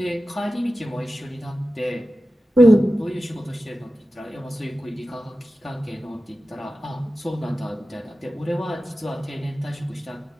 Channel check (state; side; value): normal; both; correlation 0.94